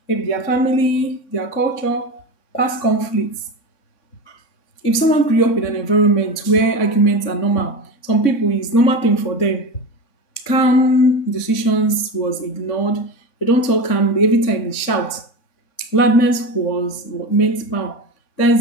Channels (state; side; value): late; right; 3.6 ms